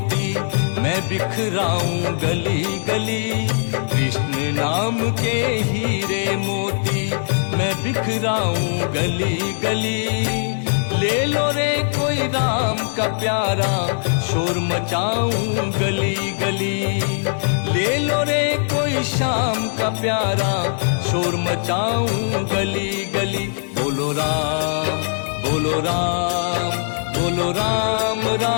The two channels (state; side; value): silent; right; 65 dB below the other